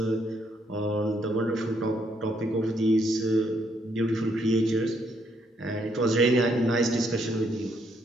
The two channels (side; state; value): both; normal; correlation 0.73